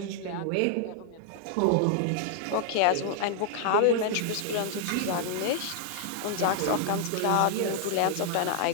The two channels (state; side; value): different; both; correlation 0.00